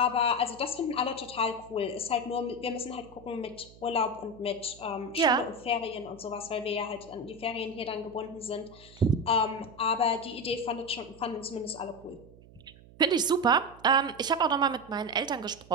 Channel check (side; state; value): right; noise; hum, 22 dB below the sound